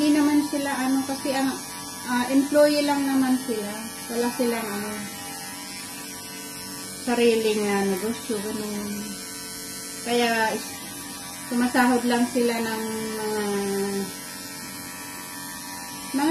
naman sila kasi ang employee lang naman sila. Wala silang sariling negosyo, ganun. Kaya sumasahod lang sila ng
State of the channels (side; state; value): both; identical; correlation 1.00